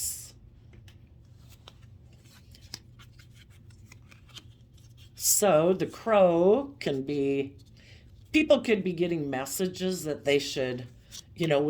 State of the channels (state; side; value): identical; both; correlation 1.00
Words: So, the crow can be, people could be getting messages that they should,